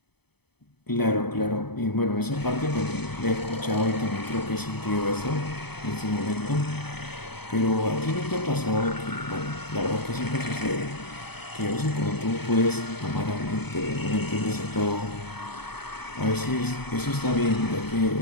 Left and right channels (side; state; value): right; late; 0.98 ms